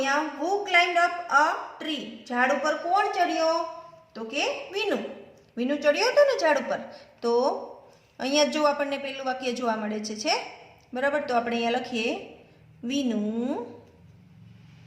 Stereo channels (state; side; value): identical; both; correlation 1.00